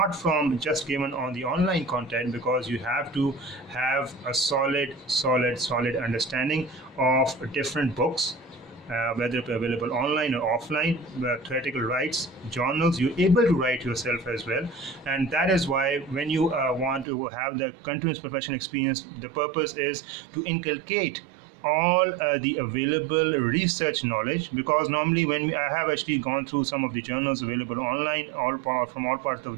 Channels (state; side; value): drops out; left; at 17.1 s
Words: from just given on the online content, because you have to have a solid understanding of different books, whether available online or offline, theoretical writes, journals. You're able to write yourself as well. And that is why when you want to have the continuous professional experience, the purpose is to inculcate all the available research knowledge, because normally when I have actually gone through some of the journals available online, from all parts of